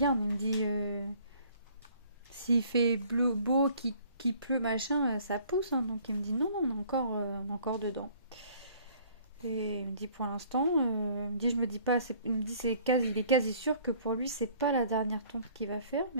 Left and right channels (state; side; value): inverted; both; correlation -0.56